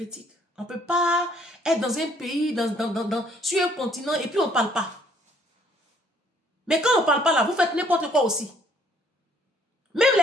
On ne peut pas être dans un pays, sur un continent et puis on ne parle pas. Mais quand on ne parle pas là, vous faites n'importe quoi aussi. Même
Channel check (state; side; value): normal; both; correlation 0.64